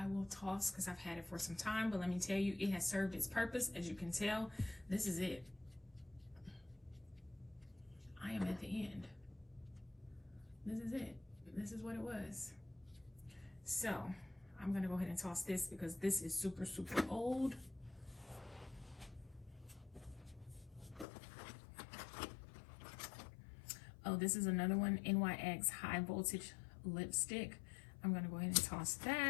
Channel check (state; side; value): drops out; right; at 21.1 s